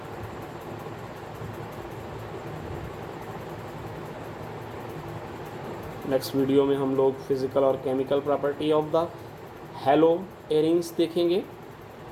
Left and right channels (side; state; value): both; identical; correlation 1.00